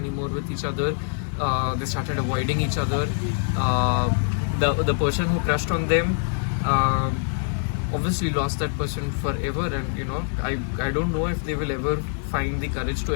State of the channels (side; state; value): right; silent; 62 dB below the other